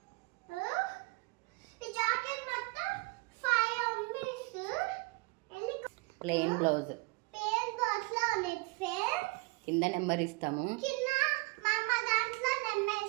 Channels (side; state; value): left; quieter; 27.8 dB